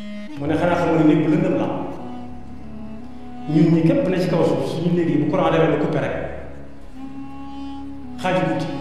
mu ne xanaa xamoo ne néeg bu lëndëm la ñun ñi képp ne ci kaw suuf suñu néeg yi bu courant demee ba coupé rek xaaju guddi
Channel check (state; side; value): identical; both; correlation 1.00